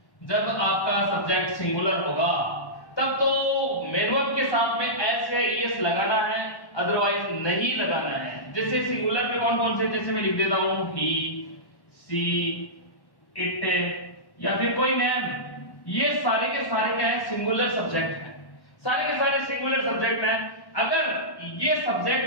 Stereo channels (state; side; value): late; right; 1.1 ms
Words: जब आपका सब्जेक्ट सिंगुलर होगा तब तो मैन वर्ब के साथ में एस या ईएस लगाना है, अदरवाइज नहीं लगाना है. जैसे सिंगुलर में कौन कौन से, जैसे मैं लिख देता हूं ही, सी, इट या फिर कोई नेम. ये सारे के सारे क्या है? सिंगुलर सब्जेक्ट है. सारे के सारे सिंगुलर सब्जेक्ट हैं. अगर ये